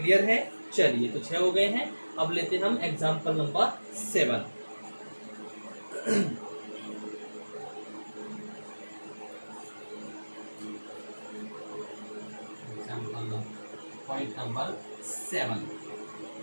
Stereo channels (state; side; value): inverted; both; correlation -1.00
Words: है? चलिए, तो 6 हो गए हैं। अब लेते हैं हम एग्जाम्पल नंबर 7। पॉइंट नंबर 7,